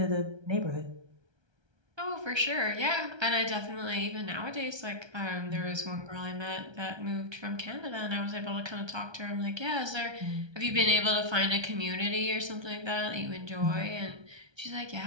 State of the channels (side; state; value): left; late; 1.3 ms